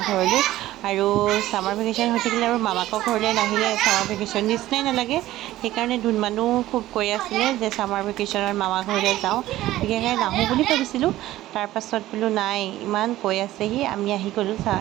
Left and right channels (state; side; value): quieter; left; 15.3 dB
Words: ঘৰলৈ। আৰু ছামাৰ ভেকেশ্যন হৈ থাকিলে আৰু মামাকৰ ঘৰলৈ নাহিলে ছামাৰ ভেকেশ্যন নিচিনাই নালাগে। সেইকাৰণে ধুনমানো খুব কৈ আছিলে যে ছামাৰ ভেকেশ্যনত মামা ঘৰলৈ যাওঁ, বিশেষকৈ নাহোঁ বুলি ভাবিছিলোঁ। তাৰপাছত বোলো নাই, ইমান কৈ আছেহি, আমি আহি গ'লোঁ।